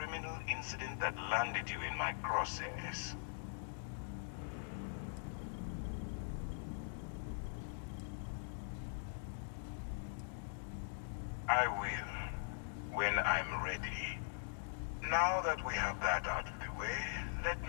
incident that landed you in my crosshairs. I will, when I'm ready. Now that we have that out of the way, let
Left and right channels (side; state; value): right; silent; digital silence